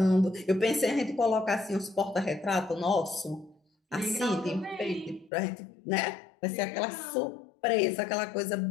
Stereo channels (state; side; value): drops out; right; at 5.3 s